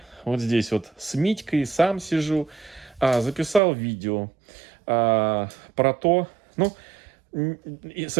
Вот здесь вот с Митькой сам сижу. Записал видео про то... Ну, и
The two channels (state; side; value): drops out; left; at 3.6 s